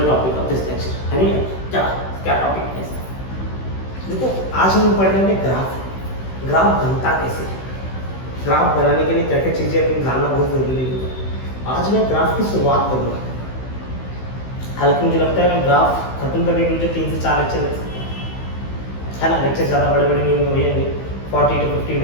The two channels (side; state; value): right; late; 16 ms